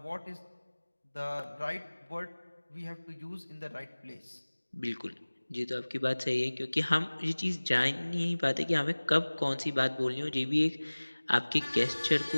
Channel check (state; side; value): inverted; both; correlation -1.00